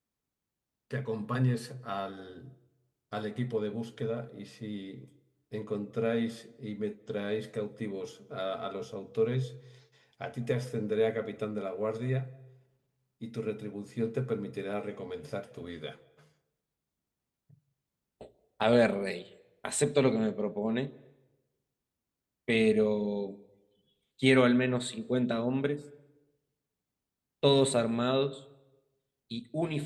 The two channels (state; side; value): identical; both; correlation 1.00